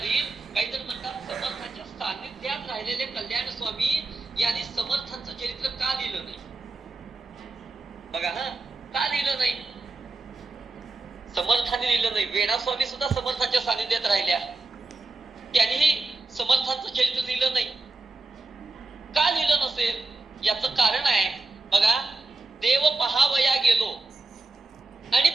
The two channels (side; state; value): left; quieter; 3.3 dB